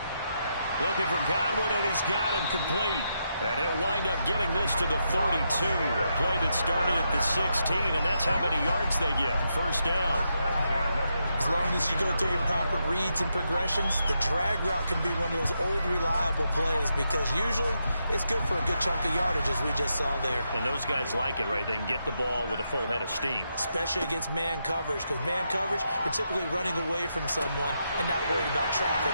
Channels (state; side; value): inverted; both; correlation -0.82